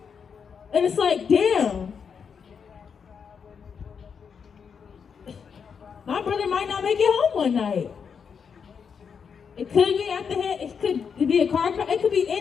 and it's like, damn. My brother might not make it home one night. It could be at the head, it could be a car crash, it could be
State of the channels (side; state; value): right; quieter; 6.5 dB